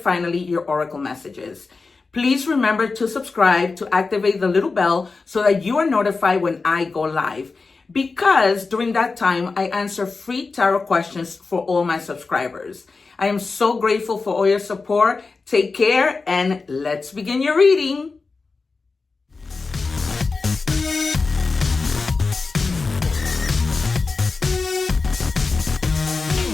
your oracle messages. Please remember to subscribe, to activate the little bell so that you are notified when I go live. Because during that time, I answer free tarot questions for all my subscribers. I am so grateful for all your support. Take care and let's begin your reading.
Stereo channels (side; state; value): right; quieter; 4.2 dB